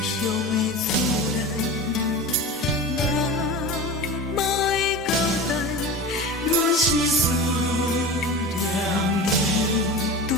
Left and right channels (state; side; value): normal; both; correlation 0.31